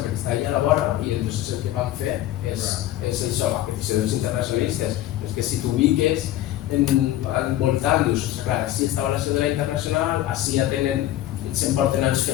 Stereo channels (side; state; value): right; quieter; 13.8 dB